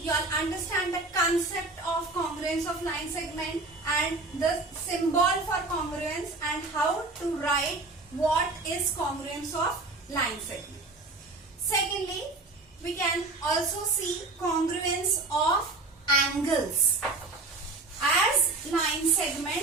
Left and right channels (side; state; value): left; quieter; 3.3 dB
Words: all understand the concept of congruence of line segment and the symbol for congruence and how to write what is congruence of line segment. Secondly, we can also see congruence of angles. As line